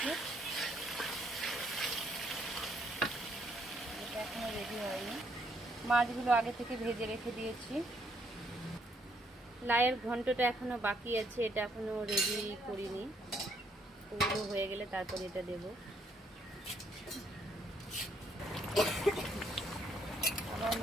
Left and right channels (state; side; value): normal; both; correlation 0.70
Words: এটা এখনো রেডি হয়নি। মাছগুলো আগে থেকে ভেজে রেখে দিয়েছি। লাউয়ের ঘন্টটা এখনো বাকি আছে, এটা এখনো রেডি করিনি। ওগুলো হয়ে গেলে তারপর এটা দেব। আমার